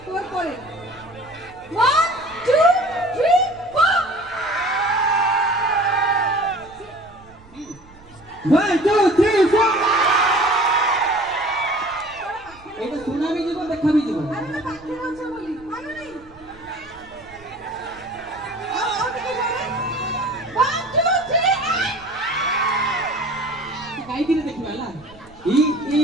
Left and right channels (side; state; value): right; noise; rumble, 24 dB below the sound